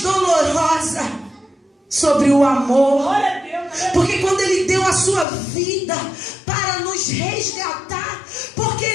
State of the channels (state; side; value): drops out; right; at 5.2 s